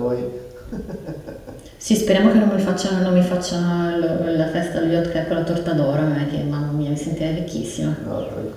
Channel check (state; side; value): identical; both; correlation 1.00